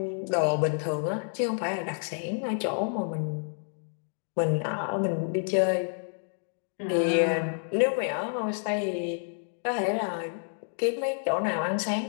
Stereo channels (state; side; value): silent; right; digital silence